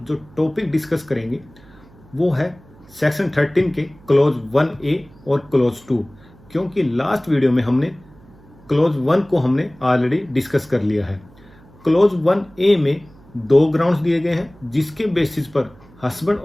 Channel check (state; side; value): noise; right; hum, 26 dB below the sound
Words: जो टॉपिक डिस्कस करेंगे वो है सेक्शन 13 के क्लोज 1A और क्लोज 2। क्योंकि लास्ट वीडियो में हमने क्लोज 1 को हमने ऑलरेडी डिस्कस कर लिया है। क्लोज 1A में दो ग्राउंड्स दिए गए हैं जिसके बेसिस पर हस्बैंड